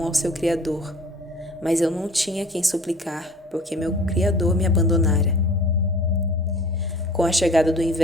ao seu Criador, mas eu não tinha quem suplicar, porque meu Criador me abandonara. Com a chegada do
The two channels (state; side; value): normal; both; correlation 0.47